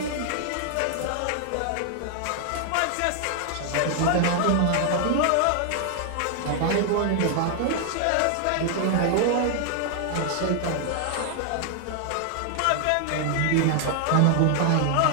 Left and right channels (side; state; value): both; different; correlation 0.00